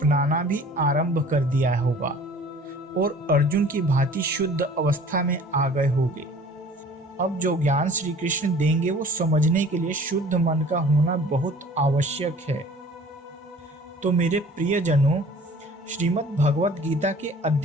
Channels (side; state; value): both; normal; correlation 0.48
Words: भी आरंभ कर दिया होगा और अर्जुन की भांति शुद्ध अवस्था में आ गए होंगे। अब जो ज्ञान श्री कृष्ण देंगे वो समझने के लिए शुद्ध मन का होना बहुत आवश्यक है। तो मेरे प्रियजनों, श्रीमद् भगवत गीता के